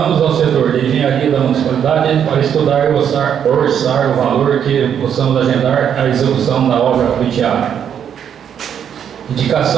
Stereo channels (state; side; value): quieter; left; 8.6 dB